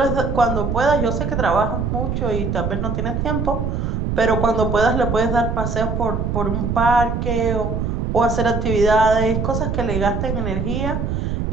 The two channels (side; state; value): right; noise; rumble, 1 dB below the sound